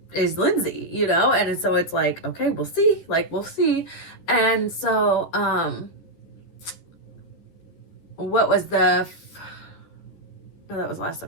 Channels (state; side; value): late; right; 12 ms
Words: is Lindsay, you know? And so it's like, okay, we'll see. Like, we'll see. And so, what was no, that was last